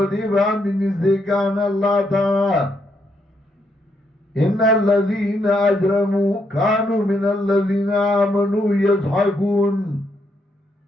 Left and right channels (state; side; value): normal; both; correlation 0.77